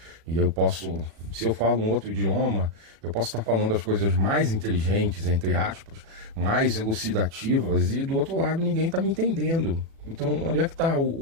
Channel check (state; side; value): late; left; 36 ms